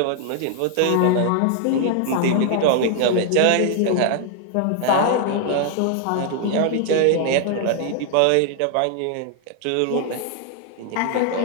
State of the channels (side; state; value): both; different; correlation 0.00